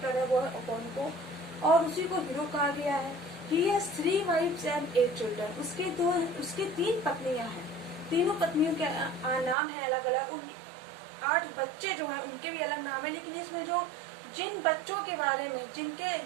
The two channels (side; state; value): left; drops out; at 9.6 s